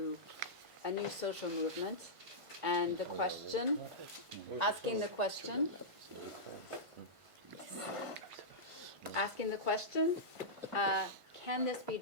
a new social movement. And the question, asking the question, can this be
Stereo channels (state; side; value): late; left; 1.5 ms